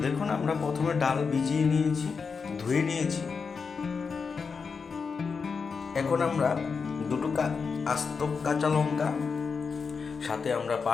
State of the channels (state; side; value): quieter; right; 5.3 dB